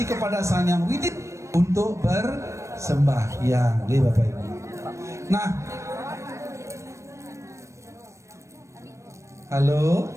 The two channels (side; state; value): left; late; 0.14 ms